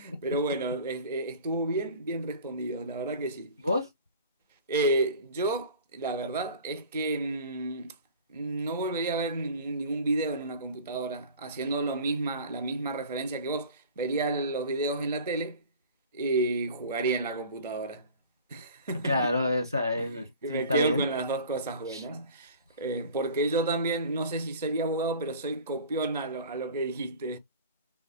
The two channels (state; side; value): inverted; both; correlation -0.42